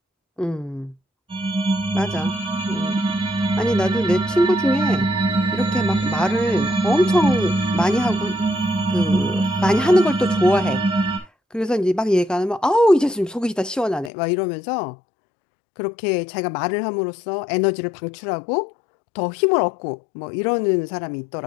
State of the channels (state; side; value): drops out; right; at 14.1 s